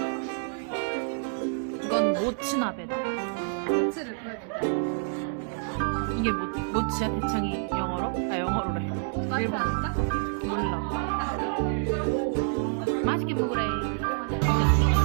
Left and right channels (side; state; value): left; silent; digital silence